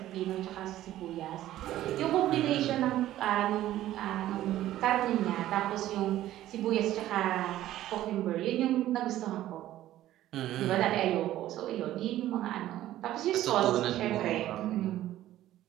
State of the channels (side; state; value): left; quieter; 13.8 dB